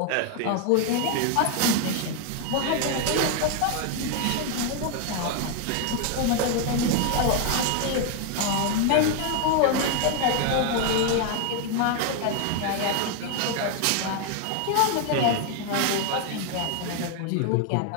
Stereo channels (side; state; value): both; different; correlation 0.01